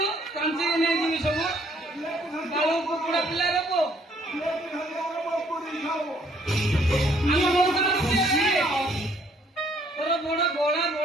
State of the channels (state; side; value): normal; both; correlation 0.65